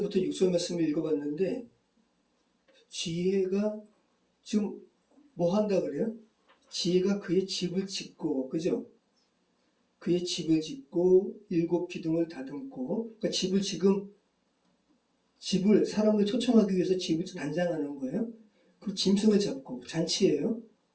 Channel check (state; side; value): identical; both; correlation 1.00